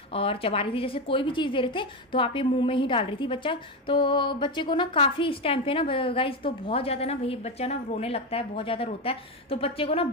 और चबा रही थी। जैसे कोई भी चीज़ दे रहे थे तो आप ये मुंह में ही डाल रही थी बच्चा। तो बच्चे को ना काफ़ी इस टाइम पे ना गाइस, तो बहुत ज़्यादा ना भाई बच्चा ना रोने लगता है, बहुत ज़्यादा रोता है। तो बच्चे को ना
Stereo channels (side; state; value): both; normal; correlation 0.13